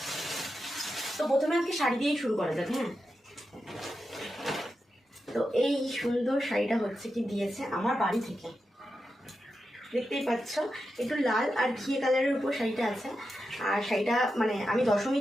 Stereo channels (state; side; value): normal; both; correlation 0.89